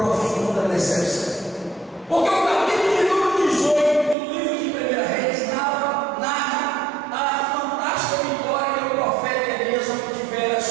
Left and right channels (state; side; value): drops out; left; at 4.2 s